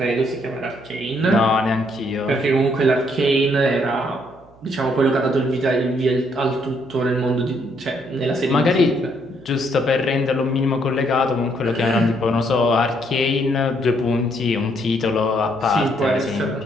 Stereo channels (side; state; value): right; noise; hum, 26 dB below the sound